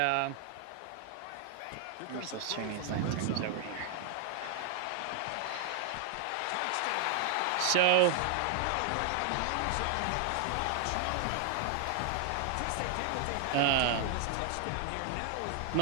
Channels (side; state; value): both; different; correlation 0.00